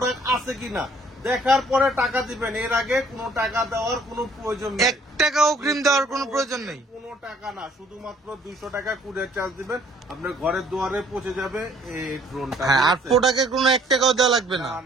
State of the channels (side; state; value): both; normal; correlation 0.59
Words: আছে কিনা দেখার পরে টাকা দিবেন, এর আগে কোনো টাকা দেওয়ার কোনো প্রয়োজন নেই। 1 টাকা অগ্রিম দেওয়ার কোনো প্রয়োজন নেই। কোনো টাকা না, শুধুমাত্র 200 টাকা কুরিয়ার চার্জ দিবেন, আপনার ঘরের দুয়ারে পৌঁছে যাবে এই ড্রোনটা। হ্যাঁ, আর ঠিক আছে? প্রোডাক্টের কোনো 1 টাকাও দেওয়া লাগবে না। না